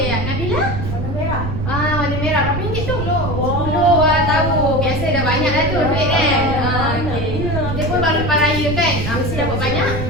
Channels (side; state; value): right; noise; rumble, 4 dB below the sound